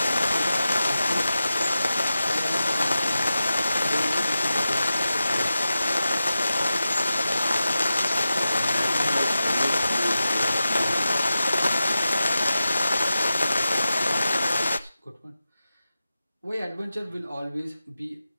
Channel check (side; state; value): both; inverted; correlation -0.92